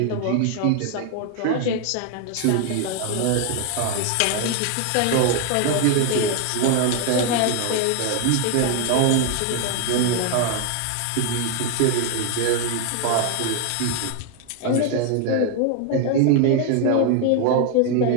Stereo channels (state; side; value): different; both; correlation 0.00